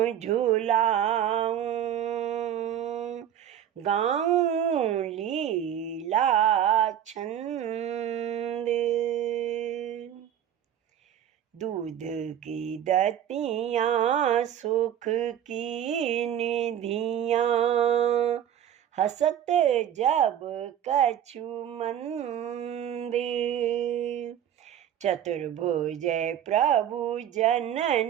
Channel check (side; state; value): left; quieter; 10.2 dB